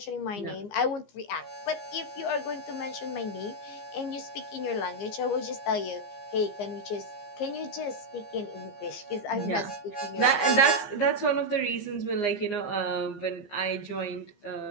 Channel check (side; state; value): right; late; 15 ms